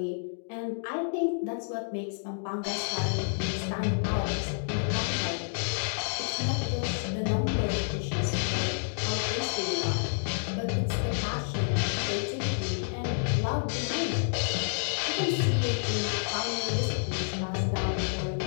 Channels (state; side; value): silent; right; digital silence